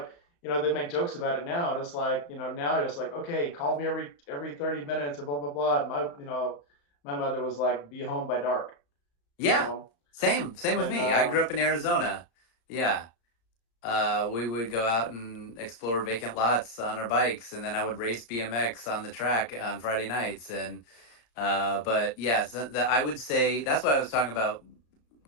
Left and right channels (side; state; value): right; late; 35 ms